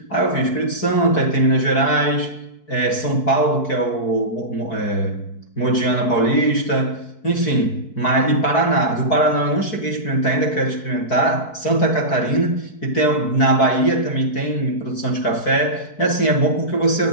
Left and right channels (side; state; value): right; late; 4.6 ms